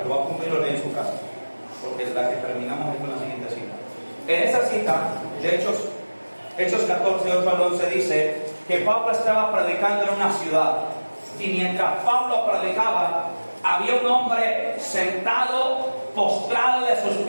lo va a apuntar y lo lee en su casa, porque la que terminamos es con la siguiente cita. En esa cita de Hechos 14, 8 al 11 dice que Pablo estaba predicando en una ciudad, y mientras Pablo predicaba, había un hombre sentado, postrado de sus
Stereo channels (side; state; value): both; inverted; correlation -1.00